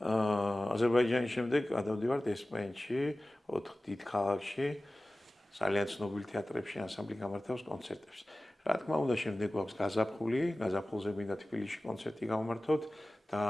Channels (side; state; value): both; normal; correlation 0.97